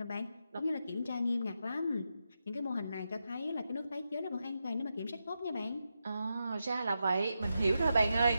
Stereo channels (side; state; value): both; inverted; correlation -0.87